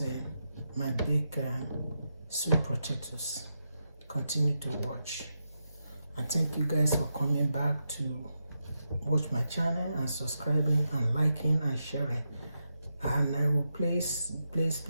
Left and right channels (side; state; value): both; inverted; correlation -0.86